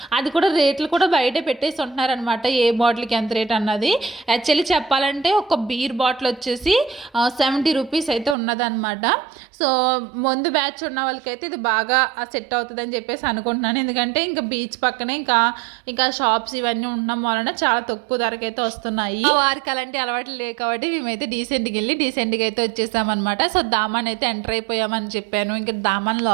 అది కూడా రేట్లు కూడా బయటే పెట్టేసి ఉంటున్నారనమాట, ఏ బాటిల్కి ఎంత రేట్ అన్నది. యాక్చువల్లీ చెప్పాలంటే ఒక బీర్ బాటిల్ వచ్చేసి 70 rupees అయితే ఉన్నదనమాట. సో ముందు బ్యాచ్ ఉన్న వాళ్ళకైతే ఇది బాగా సెట్ అవుతుందని చెప్పేసి అనుకుంటున్నాను. ఎందుకంటే ఇంకా బీచ్ పక్కనే ఇంకా షాప్స్ ఇవన్నీ ఉండడం వలన చాలా తక్కువ ధరకైతే వస్తున్నాయి. వారికి అలాంటి అలవాట్లు లేవు కాబట్టి మేమైతే డీసెంట్గా అయితే వచ్చేసామన్నమాట. సో దామన్ అయితే ఎంటర్ అయిపోయామని చెప్పాను. ఇంకా దామన్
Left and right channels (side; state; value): left; drops out; at 8.3 s